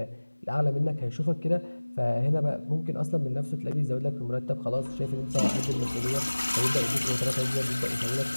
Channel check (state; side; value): inverted; both; correlation -1.00